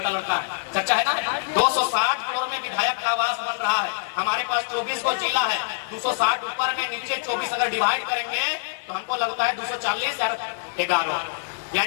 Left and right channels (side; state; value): right; quieter; 37.5 dB